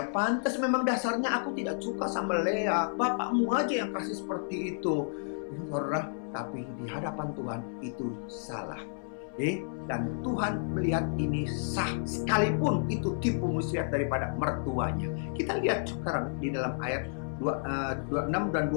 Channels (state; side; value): silent; right; 57 dB below the other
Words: pantas, memang dasarnya aku tidak suka sama Lea, bapakmu aja yang kasih seperti itu. Saudara, tapi di hadapan Tuhan itu salah. Dan Tuhan melihat ini sah, sekalipun itu tipu muslihat daripada mertuanya. Kita lihat sekarang di dalam ayat 26 dan